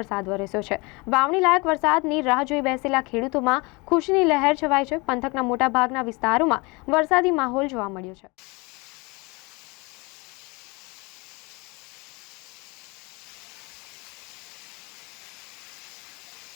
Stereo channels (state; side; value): quieter; right; 26.9 dB